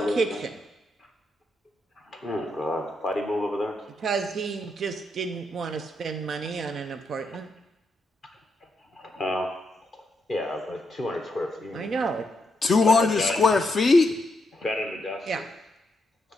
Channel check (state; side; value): normal; both; correlation 0.81